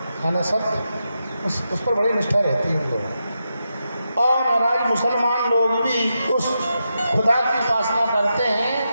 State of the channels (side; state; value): both; inverted; correlation -0.87